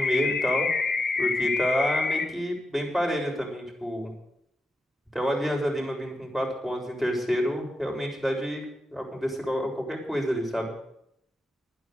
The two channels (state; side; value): normal; both; correlation 0.87